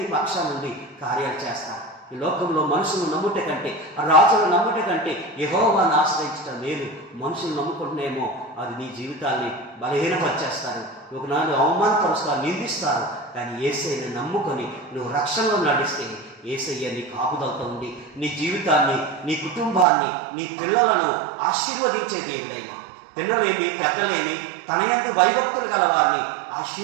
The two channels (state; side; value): drops out; left; at 19.9 s